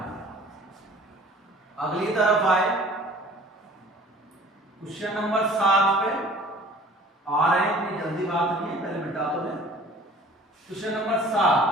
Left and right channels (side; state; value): both; normal; correlation 0.48